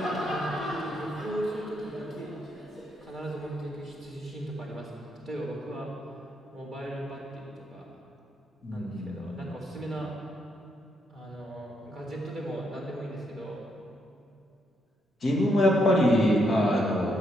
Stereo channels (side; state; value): both; normal; correlation 0.77